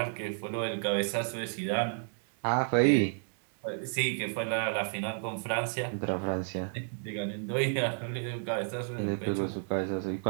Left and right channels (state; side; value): silent; left; digital silence